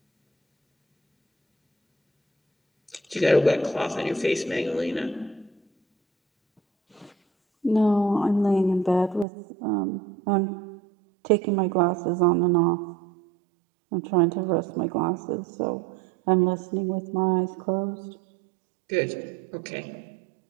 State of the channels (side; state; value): left; drops out; at 9.2 s